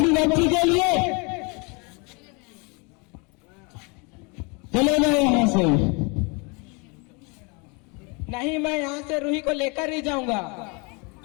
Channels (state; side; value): quieter; right; 30.7 dB